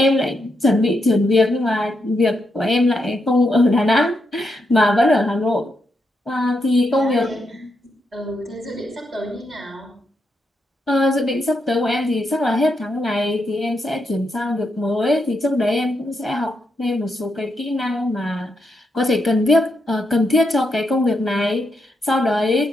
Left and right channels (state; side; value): normal; both; correlation 0.82